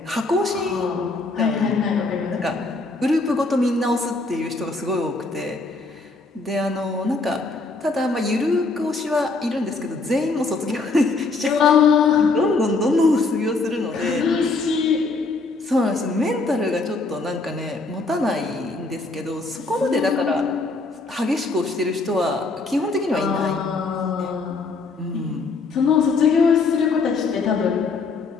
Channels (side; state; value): right; quieter; 3.7 dB